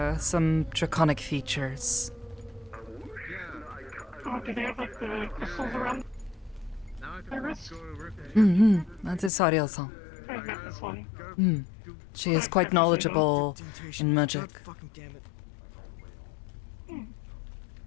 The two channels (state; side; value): drops out; right; at 9.3 s